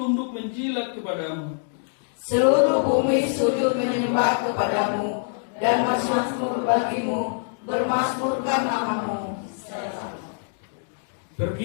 menjilat kepadamu. Seluruh bumi sujud menyembah kepadamu, dan bermasmur bagimu, bermasmurkan namamu.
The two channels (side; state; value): right; silent; digital silence